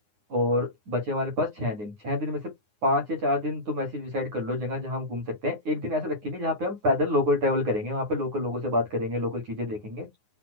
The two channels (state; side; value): late; left; 9.6 ms